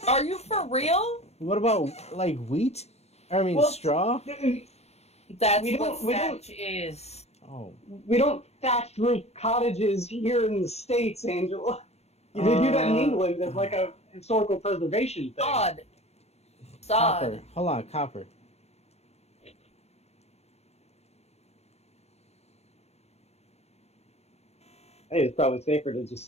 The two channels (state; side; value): late; right; 0.31 ms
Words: Are you for real? What about, like, wheat? I mean, Well, straw? That's We what don't- we don't- thatch is. Oh. We don't thatch roof cottages here in the States, Angela. They do that in England as like a historical preservation thing. Sod. Copper. Hold on, copper. I think it's probably safer to just